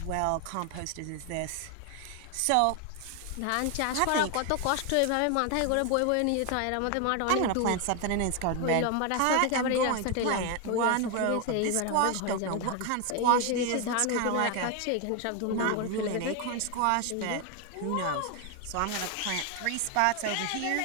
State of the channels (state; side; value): different; both; correlation 0.01